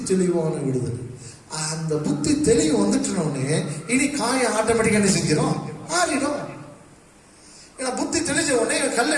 தெளிவான விடுதலை. அந்த புத்தி தெளிவு வந்துட்டோடனே இனி காயம் ஆட்டோமேட்டிக்காக என்ன செஞ்சிடும்? ஆறிடும். ஏன்னா புத்தி தெளிஞ்ச உடனே கல்லை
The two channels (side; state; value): both; identical; correlation 1.00